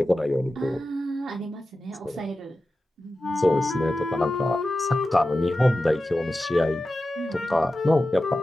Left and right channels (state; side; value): normal; both; correlation 0.93